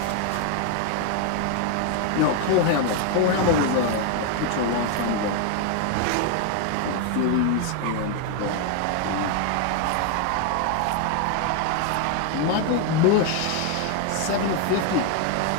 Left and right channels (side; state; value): both; different; correlation 0.01